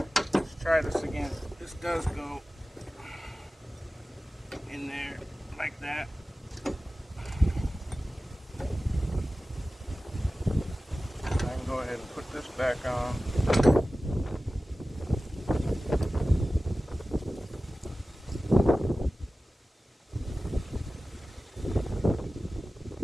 Let's try this again. This does go in there like that. I can go ahead and put this back on.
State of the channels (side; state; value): both; normal; correlation 0.96